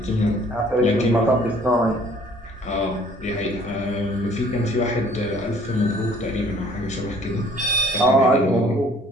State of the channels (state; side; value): normal; both; correlation 0.56